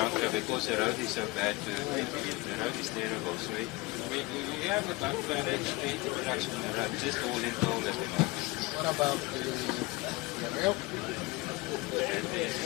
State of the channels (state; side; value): quieter; right; 23.0 dB